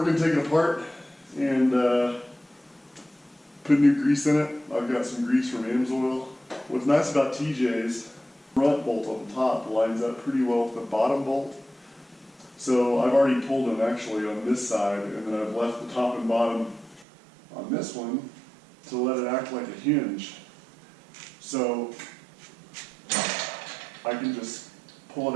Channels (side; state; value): left; drops out; at 17.1 s